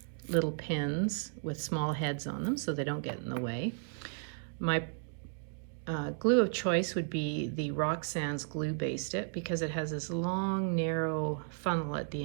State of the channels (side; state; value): left; silent; digital silence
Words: little pins with small heads on them so they don't get in the way. My glue of choice would be the Roxanne's Glue Based It, because it has this long narrow funnel at the